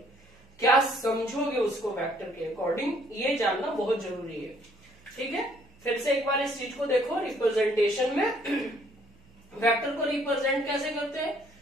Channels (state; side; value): noise; right; hum, 28 dB below the sound